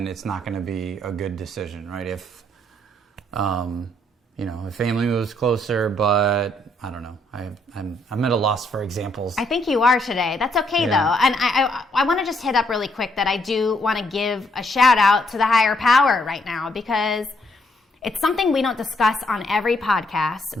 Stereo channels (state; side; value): normal; both; correlation 0.72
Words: it's not going to be a good decision, right? If, if family moves closer, but I don't know. I'm at a loss for examples. I think you are today. That's okay, though. And I want to just hit up really quick that I do want to give a shout out to the higher power right now, because it's something we don't discuss on every podcast,